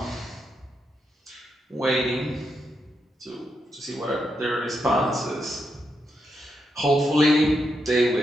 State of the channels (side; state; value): both; normal; correlation 0.83